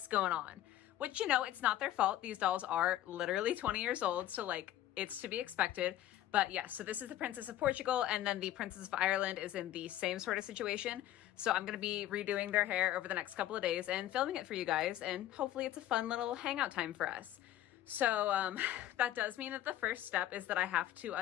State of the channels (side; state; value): right; quieter; 13.2 dB